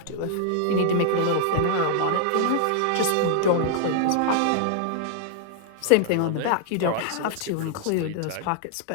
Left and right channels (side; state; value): both; different; correlation -0.01